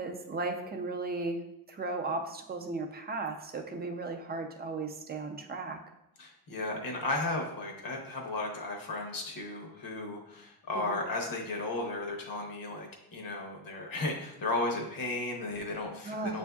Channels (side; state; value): both; normal; correlation -0.02